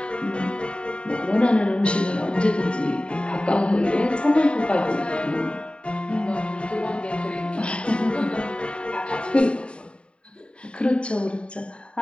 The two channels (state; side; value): late; right; 0.055 ms